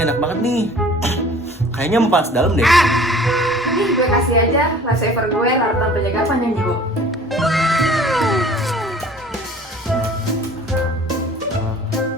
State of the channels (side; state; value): both; normal; correlation 0.48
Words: enak banget nih. Kayaknya mau panas dalam deh. Nih, gue kasih aja lifesaver gue, larutan penjaga panjang jiwa.